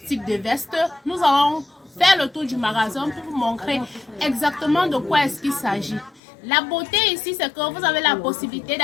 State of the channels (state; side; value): drops out; right; at 6.2 s